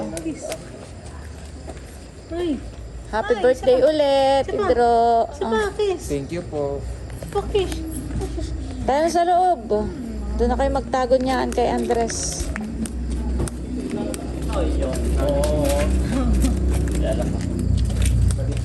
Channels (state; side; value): identical; both; correlation 1.00